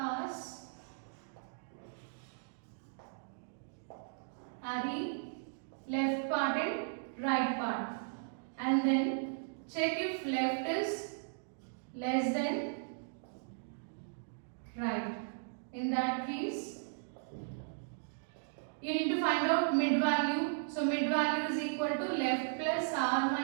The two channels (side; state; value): left; silent; digital silence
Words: array left part and right part, and then check if left is less than right. In that case, you need to find out mid value. So mid value is equal to left plus r